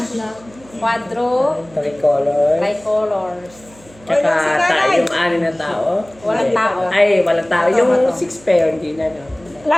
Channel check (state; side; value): noise; right; hum, 25 dB below the sound